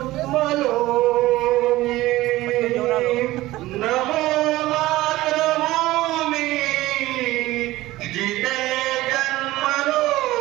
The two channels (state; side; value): quieter; left; 17.4 dB